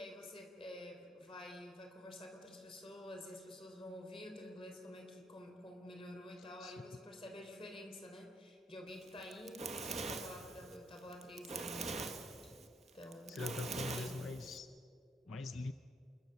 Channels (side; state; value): both; normal; correlation 0.71